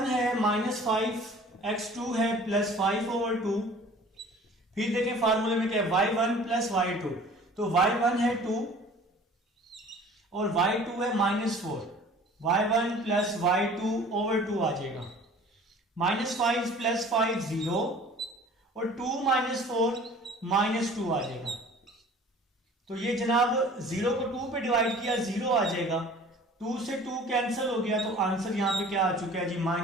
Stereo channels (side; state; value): both; normal; correlation 0.47